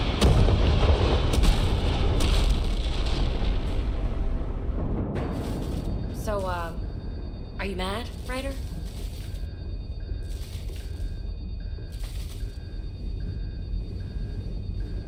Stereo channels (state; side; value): identical; both; correlation 1.00